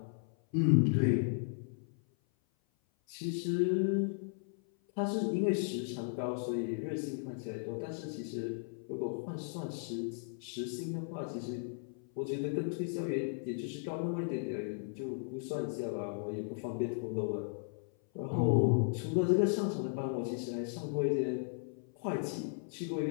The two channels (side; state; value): right; silent; 54 dB below the other